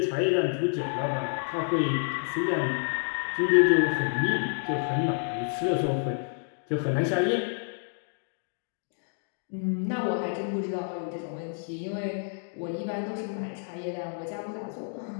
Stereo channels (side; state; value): right; silent; 58 dB below the other